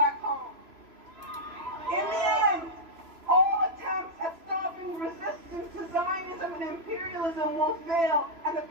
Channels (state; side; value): late; left; 3.0 ms